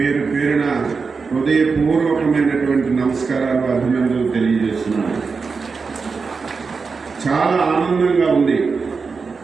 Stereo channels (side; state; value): left; quieter; 4.9 dB